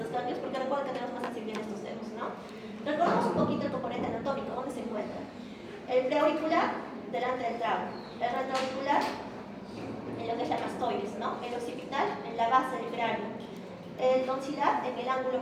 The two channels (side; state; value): both; identical; correlation 1.00